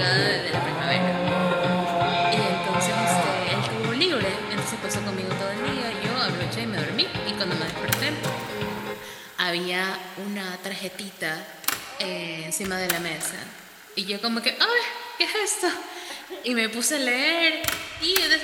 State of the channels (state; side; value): identical; both; correlation 1.00